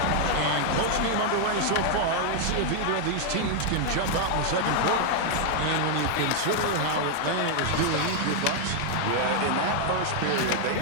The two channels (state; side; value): different; both; correlation 0.00